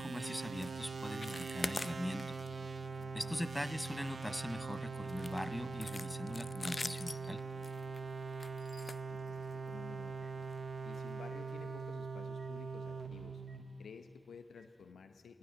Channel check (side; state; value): both; normal; correlation 0.90